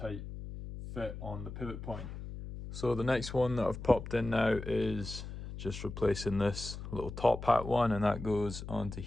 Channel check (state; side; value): noise; left; hum, 9 dB below the sound